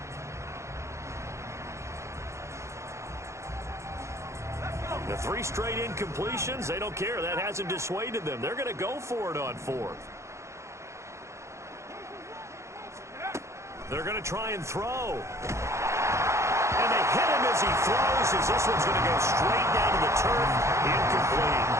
The 3 straight incompletions, they don't care. That hasn't dissuaded them. They're going to go for it on 4th. They're going to try and throw. And they hit him as he throws, as this one's going to go straight down to the turf. Incomplete.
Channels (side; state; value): left; late; 0.14 ms